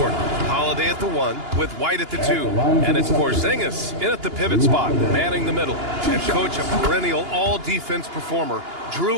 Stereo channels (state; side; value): late; left; 2.9 ms